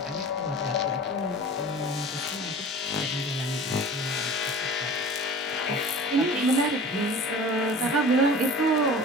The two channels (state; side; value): normal; both; correlation 0.40